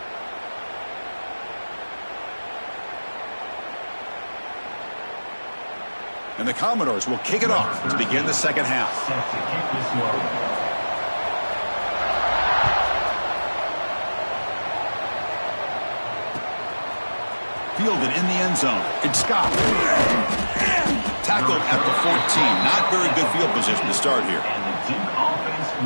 And the Commodores will kick it off to begin the second half. Fielded in the end zone. Ncaa. Tackled at the 14. Not very good field position to start here. And the Duke offense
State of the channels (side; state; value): both; inverted; correlation -1.00